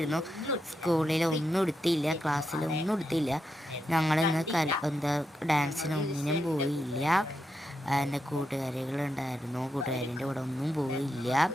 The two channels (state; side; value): normal; both; correlation 0.85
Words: സ്കൂളിൽ ഒന്നും എടുത്തില്ല, ക്ലാസ്സിൽ ഒന്നും എടുത്തില്ല. ഞങ്ങൾ ഇന്ന് ഡാൻസിനൊന്നിനും പോയില്ല. എൻ്റെ കൂട്ടുകാരികളുണ്ടായിരുന്നു, കൂട്ടുകാരിൻ്റെ കൂടെ ഒന്നും പോയില്ല.